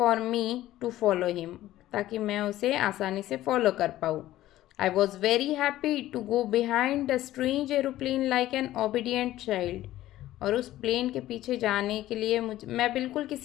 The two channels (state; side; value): quieter; right; 14.7 dB